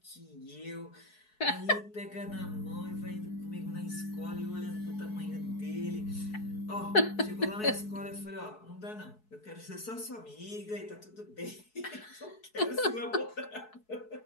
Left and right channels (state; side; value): late; right; 4.7 ms